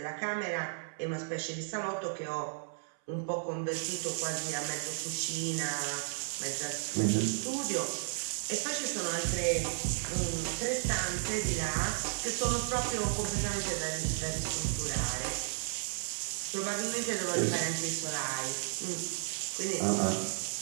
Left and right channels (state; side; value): silent; left; 55 dB below the other